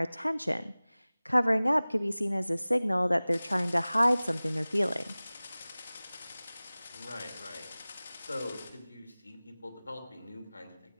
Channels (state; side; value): inverted; both; correlation -0.99